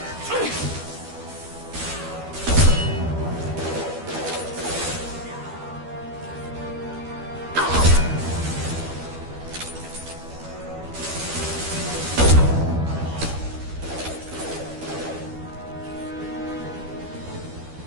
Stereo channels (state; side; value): late; left; 12 ms